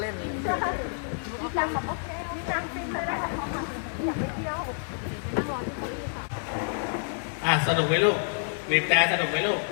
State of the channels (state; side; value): silent; right; digital silence